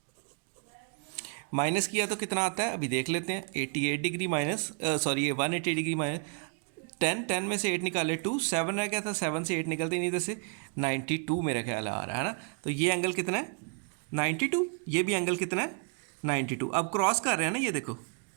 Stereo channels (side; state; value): left; quieter; 38.7 dB